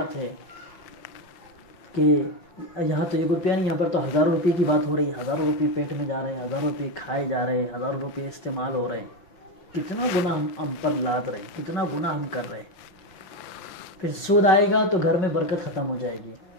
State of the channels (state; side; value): late; right; 5.8 ms